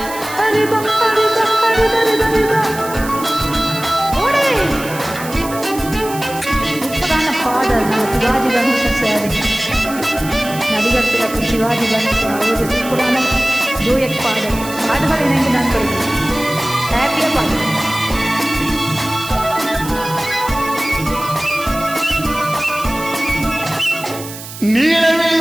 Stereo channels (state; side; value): noise; right; hiss, 13 dB below the sound